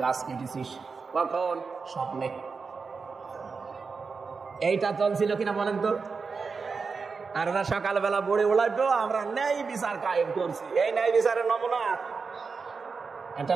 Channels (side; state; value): left; quieter; 4.9 dB